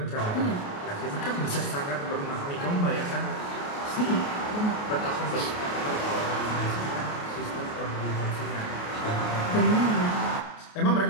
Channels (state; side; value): late; right; 28 ms